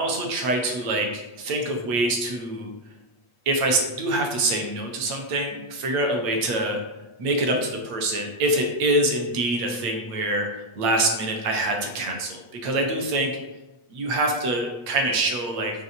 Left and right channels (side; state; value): left; late; 8.4 ms